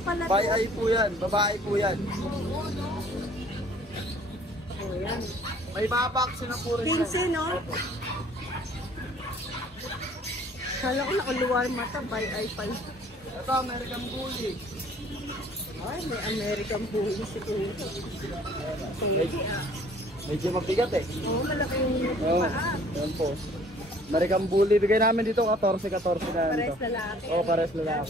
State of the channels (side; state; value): both; normal; correlation 0.55